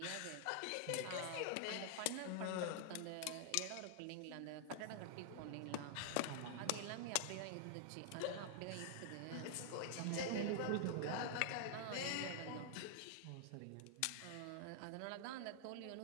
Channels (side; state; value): both; different; correlation -0.01